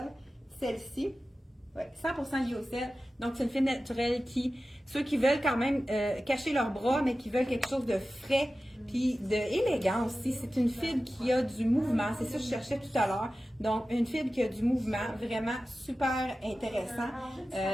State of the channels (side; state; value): both; normal; correlation 0.95